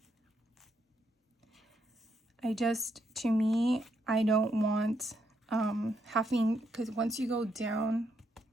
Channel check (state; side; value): normal; both; correlation 0.78